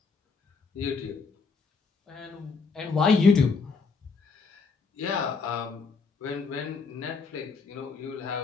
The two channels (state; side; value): quieter; right; 4.7 dB